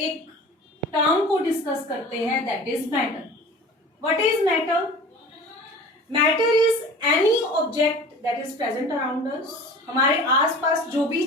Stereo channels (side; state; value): both; normal; correlation 0.40